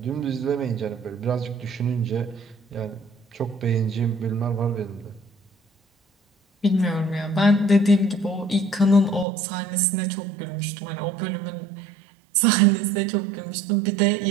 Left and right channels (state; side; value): drops out; left; at 9.2 s